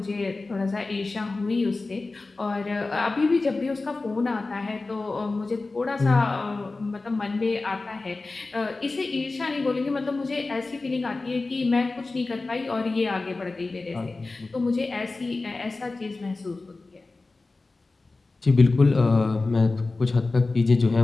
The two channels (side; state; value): right; quieter; 3.5 dB